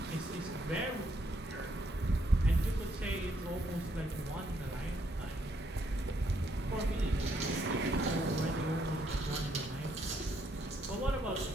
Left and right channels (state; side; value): normal; both; correlation 0.73